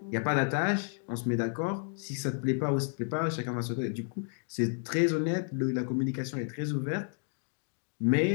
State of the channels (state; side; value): silent; right; 57 dB below the other